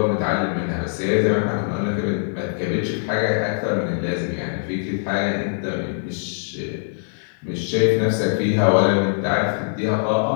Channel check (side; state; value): right; silent; digital silence